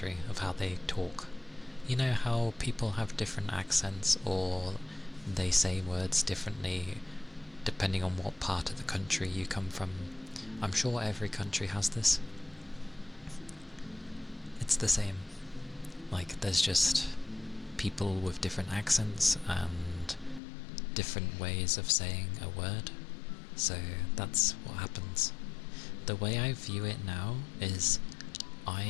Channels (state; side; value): drops out; right; at 20.4 s